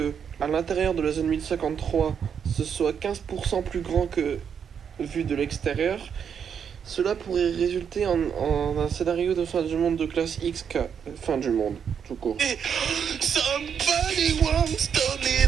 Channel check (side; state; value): left; quieter; 7.5 dB